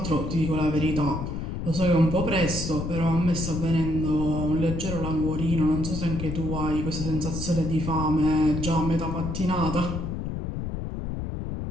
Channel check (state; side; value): noise; left; rumble, 4 dB below the sound